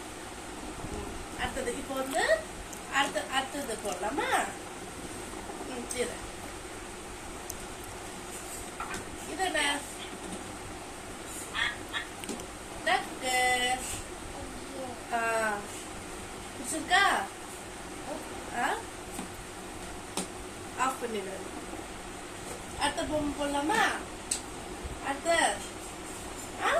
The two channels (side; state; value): both; identical; correlation 1.00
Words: அடுத்தது இப்போ வந்து அடுத்தது போடலாமா? சரி, இது என்ன? டக்கு. பிடிச்சிருக்கா? ஆஃப் பண்ணிடு. அடுத்த பொம்மை போடலாமா? அடுத்த